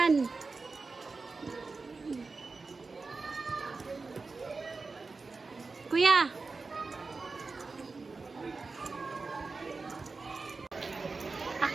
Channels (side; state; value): left; quieter; 4.1 dB